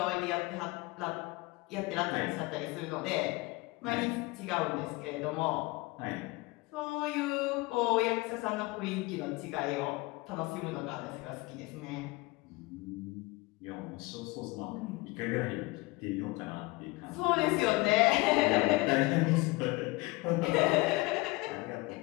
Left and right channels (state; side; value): quieter; right; 23.1 dB